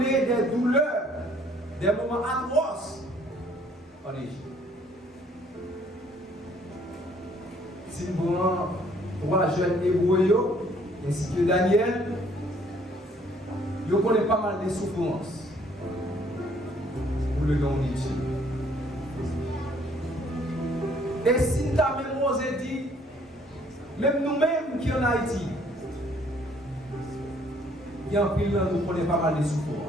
des douleurs, des moments atroces en Égypte. Si nous avons 3 jeunes hébreux, ainsi que Daniel, ils connaissent pas mal de souffrances pour le nom de Dieu. Et si nous avons même osé dire, même nous-mêmes qui en Haïti, il y a un pays où nous connaissons pas mal de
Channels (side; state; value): both; normal; correlation 0.62